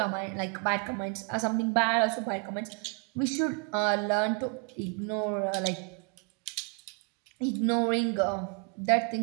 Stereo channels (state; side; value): quieter; left; 37.3 dB